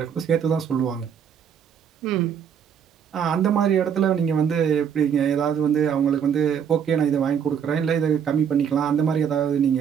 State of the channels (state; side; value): quieter; left; 7.8 dB